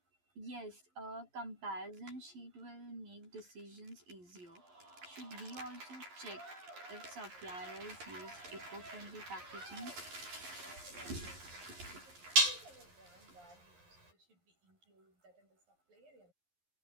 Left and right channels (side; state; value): left; late; 11 ms